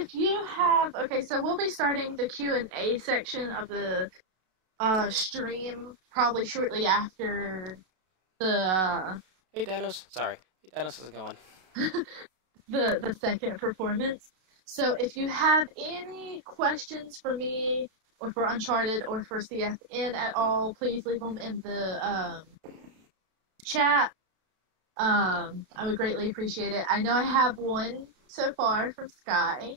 you have so we'll be starting the Q&A section of the stream probably shortly after the Hey Danos, sorry. Hey Danos, how's it going? the second performance. So if you have any questions for me or for Uncharted or for CFN at all, please leave them in the chat. I would greatly appreciate it. I know I have one so far from Sky.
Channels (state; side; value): late; left; 32 ms